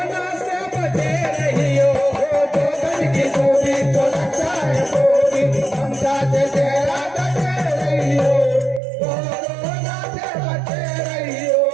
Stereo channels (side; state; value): left; drops out; at 8.8 s